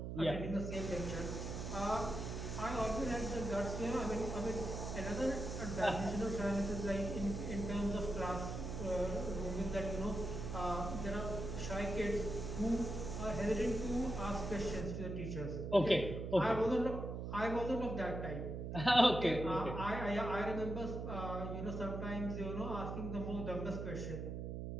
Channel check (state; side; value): noise; right; hum, 5 dB below the sound